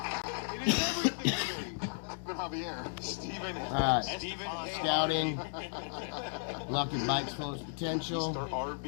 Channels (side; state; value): right; silent; digital silence